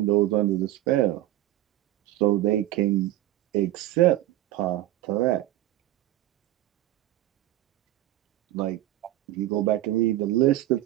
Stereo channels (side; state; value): left; quieter; 14.9 dB